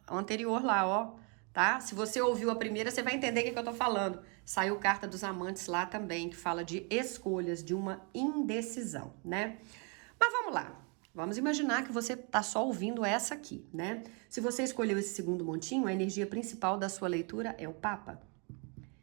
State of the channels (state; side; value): quieter; left; 34.7 dB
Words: anterior lá, ó, tá? Se você ouviu a primeira, você vai entender o que eu tô falando. Saiu carta dos amantes lá também, que fala de escolhas, de uma indecisão, né? Mas vamos lá. Vamos imaginar que você tá só ouvindo essa aqui, né? Se você escolheu esse segundo montinho, a energia principal da sua leitura é o Papa.